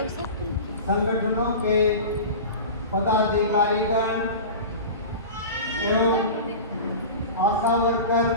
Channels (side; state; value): both; inverted; correlation -0.32